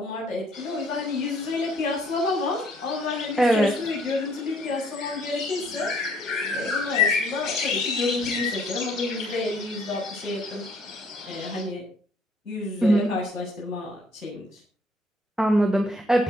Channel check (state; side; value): normal; both; correlation 0.62